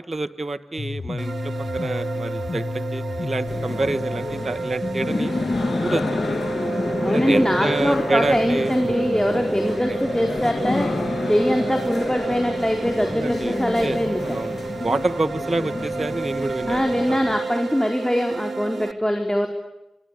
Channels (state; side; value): normal; both; correlation 0.95